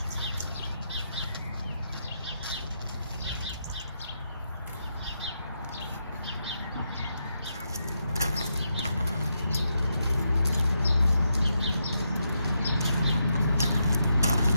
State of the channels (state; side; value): inverted; both; correlation -0.82